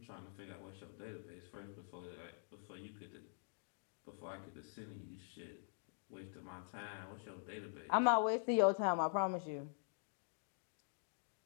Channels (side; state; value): right; silent; digital silence